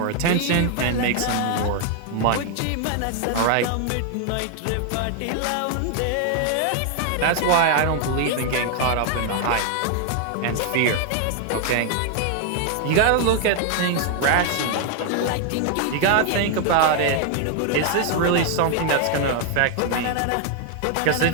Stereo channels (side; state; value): both; different; correlation 0.00